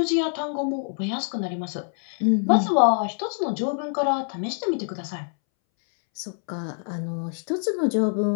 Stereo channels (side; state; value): right; silent; 62 dB below the other